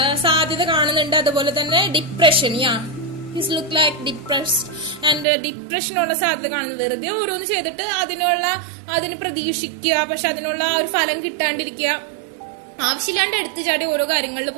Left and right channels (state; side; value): drops out; left; at 5.2 s